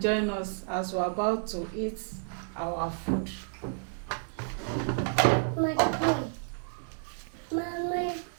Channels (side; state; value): left; silent; 57 dB below the other